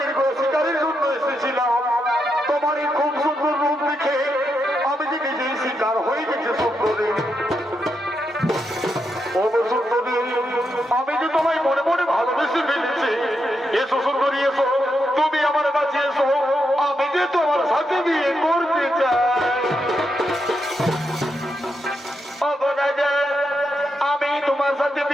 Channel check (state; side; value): normal; both; correlation 0.83